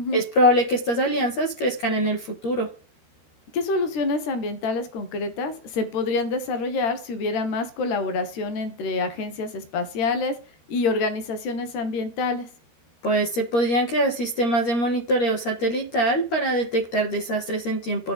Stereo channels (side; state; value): right; late; 13 ms